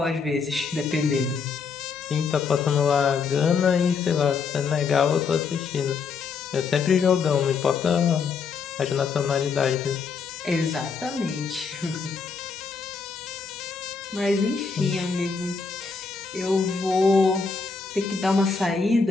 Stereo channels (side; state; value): right; quieter; 5.3 dB